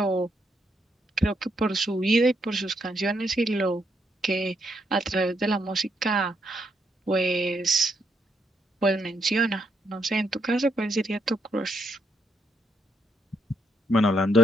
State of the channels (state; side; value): normal; both; correlation 0.76